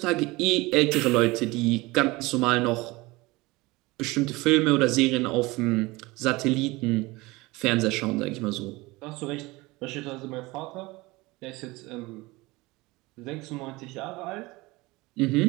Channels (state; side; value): quieter; left; 22.0 dB